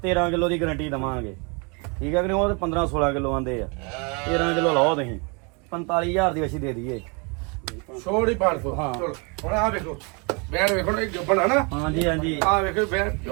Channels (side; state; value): left; quieter; 32.5 dB